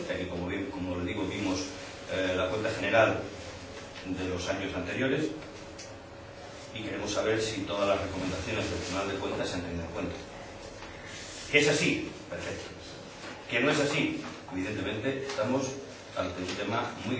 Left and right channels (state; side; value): identical; both; correlation 1.00